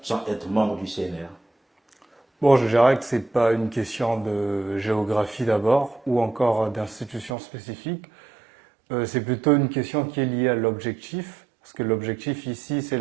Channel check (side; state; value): left; drops out; at 7.3 s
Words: sans être membre du CNR? Bon, je dirais que ce n'est pas une question de géographie d'abord, ou encore d'institution spécifique. C'est plutôt une question qui est liée à l'objectif, parce que l'objectif ici, c'est